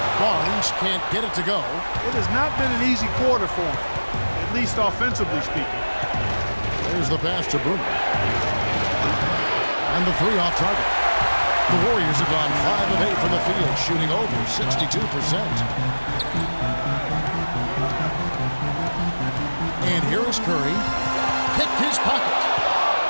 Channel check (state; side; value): inverted; both; correlation -1.00